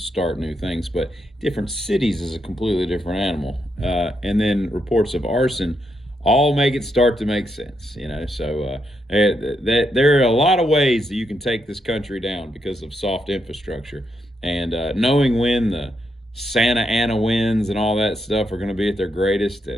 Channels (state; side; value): normal; both; correlation 0.80